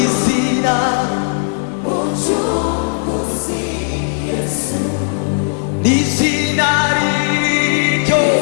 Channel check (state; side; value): silent; right; digital silence